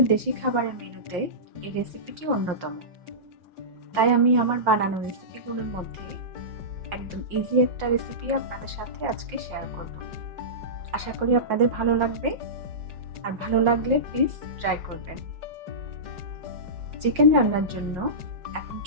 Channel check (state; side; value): late; left; 5.6 ms